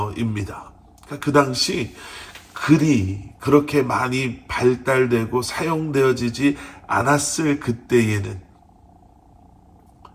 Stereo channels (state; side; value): identical; both; correlation 1.00